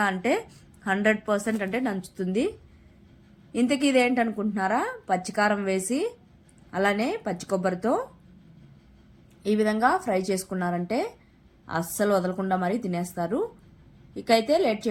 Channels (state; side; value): identical; both; correlation 1.00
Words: అంటే 100% అంటే నంచుతుంది. ఇంతకీ ఇదేంటనుకుంటున్నారా? పచ్చికారం వేసి అలానే పచ్చి కొబ్బరితో ఈ విధంగా ఫ్రై చేసుకున్నారంటే అస్సలు వదలకుండా మరీ తినేస్తారు. ఇకైతే లేట్